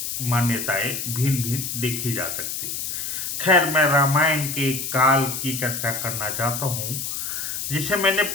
मान्यताएं भिन्न भिन्न देखी जा सकती। खैर, मैं रामायण के काल की चर्चा करना चाहता हूँ जिसे मैंने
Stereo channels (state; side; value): noise; left; hiss, 4 dB below the sound